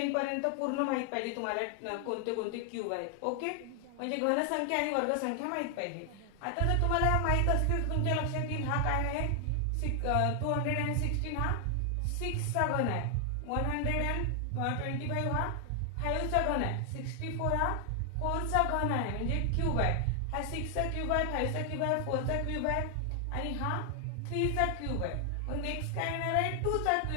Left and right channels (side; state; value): both; different; correlation 0.00